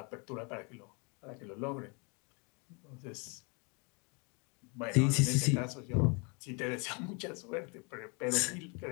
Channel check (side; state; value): right; quieter; 33.2 dB